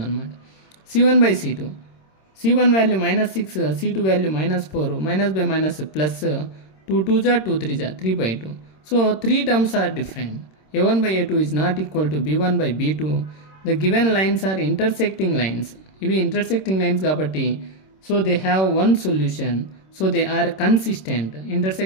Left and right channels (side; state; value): right; late; 26 ms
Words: అనమాట. c1/c2 c1 value -6, c2 value -4, -/- +2 2 జా 2 3 జా 3/2. So 3 terms are different. a1/a2 is not equal to b1/b2. The given lines are intersecting lines. ఇవి intersecting lines కాబట్టి so they have one solution, so they are consistent.